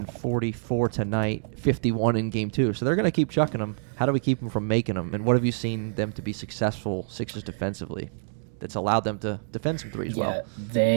44 tonight, 51 in Game 2. So they're going to keep chucking them. How do we keep them from making them? And what have you seen them to be successful, Sixers defensively, that's allowed them to defend some threes well?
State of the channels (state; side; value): silent; left; digital silence